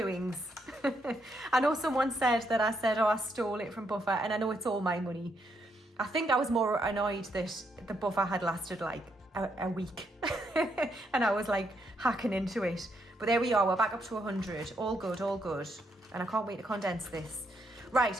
I know someone said that I said, oh, I stole it from buffer, and I know it's all my money. I think I was more annoyed that the buffer had lasted like a week and I was like hacking into it. But there we are, we're back up to 100. All good, all good. And I can't wait to condense this.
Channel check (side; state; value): both; normal; correlation 0.77